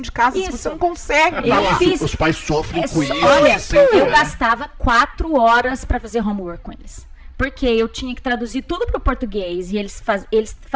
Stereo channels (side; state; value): both; identical; correlation 1.00